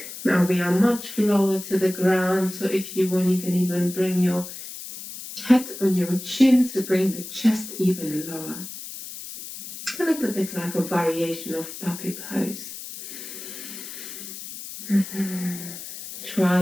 Now we are much lower to the ground, so if you want, you can even bring your head on your chin to bring the chest even lower. A little bit like a variation of puppy pose. Try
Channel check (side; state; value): left; noise; hiss, 11 dB below the sound